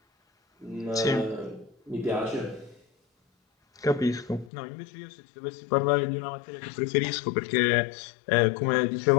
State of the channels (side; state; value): right; drops out; at 4.5 s